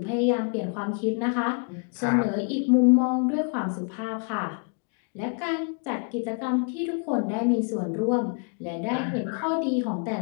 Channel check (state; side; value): quieter; right; 39.4 dB